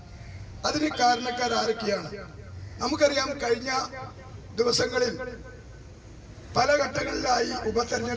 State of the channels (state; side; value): identical; both; correlation 1.00